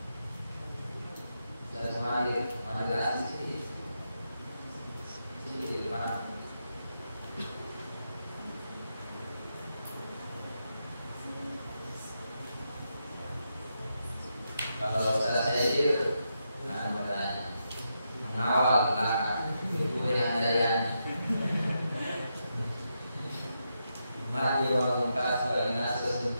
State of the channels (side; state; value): both; inverted; correlation -0.84